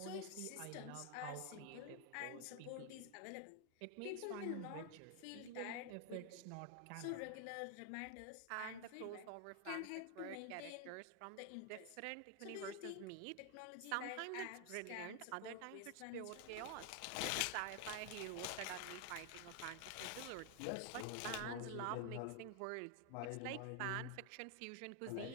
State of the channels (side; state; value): both; different; correlation 0.00